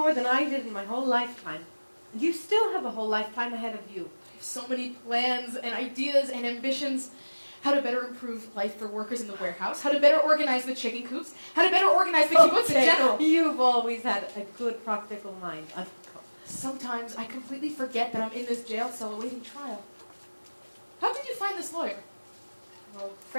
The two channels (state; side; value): inverted; both; correlation -1.00